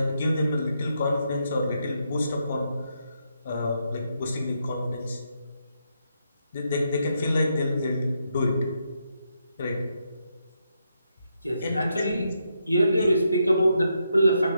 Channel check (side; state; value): both; inverted; correlation -0.80